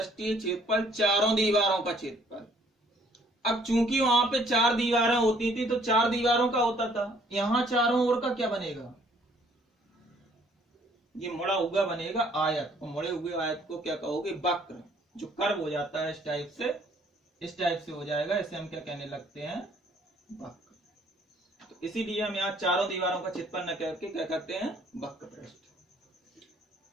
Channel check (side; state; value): both; normal; correlation 0.62